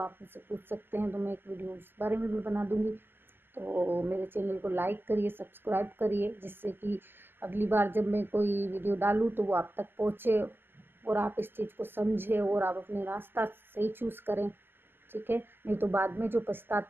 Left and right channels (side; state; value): left; late; 0.099 ms